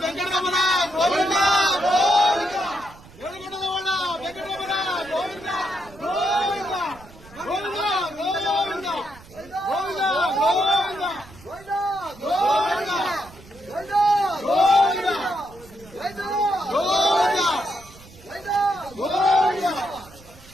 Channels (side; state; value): right; noise; rumble, 22 dB below the sound